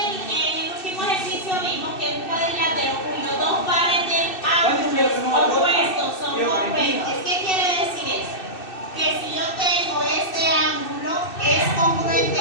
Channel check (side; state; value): right; late; 2.6 ms